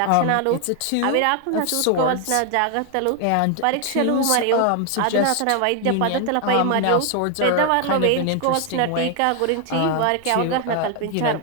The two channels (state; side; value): different; both; correlation 0.01